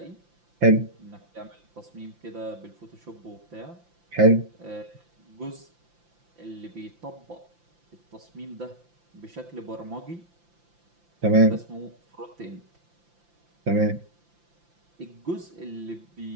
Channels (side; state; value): left; late; 5.8 ms